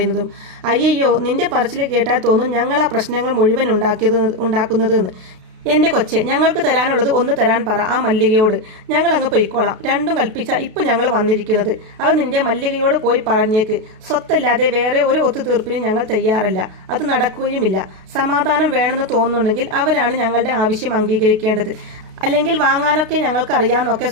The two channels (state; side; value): late; left; 32 ms